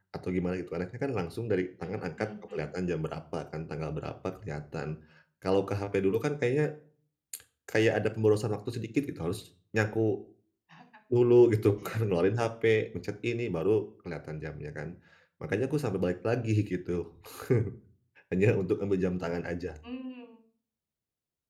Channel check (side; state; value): both; identical; correlation 1.00